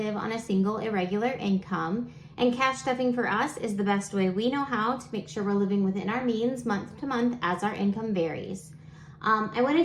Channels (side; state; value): both; identical; correlation 1.00